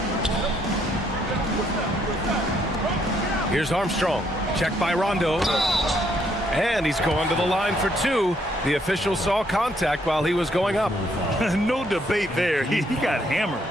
Here's Armstrong. Checked by Rondo. And he's going to the line for 2. The official saw contact while he was going up. No debate there. He got hammered.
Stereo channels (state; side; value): normal; both; correlation 0.71